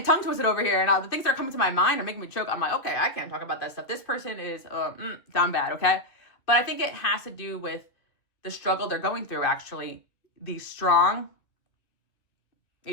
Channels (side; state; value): right; late; 2.2 ms